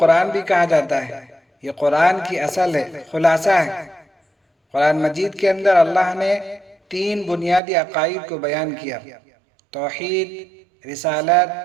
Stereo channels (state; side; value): drops out; left; at 7.6 s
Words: بھی کہا جاتا ہے۔ یہ قرآن کی اصل ہے، خلاصہ ہے۔ قرآن مجید کے اندر اللہ نے 3 بنیادی عقائد کو بیان کیا: توحید، رسالت،